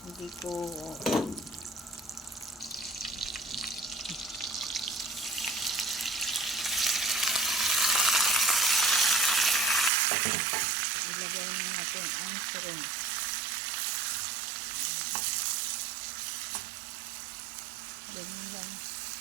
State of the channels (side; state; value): left; drops out; at 9.9 s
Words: Hindi ko ilagay na natin ang shrimp. Ganyan lang.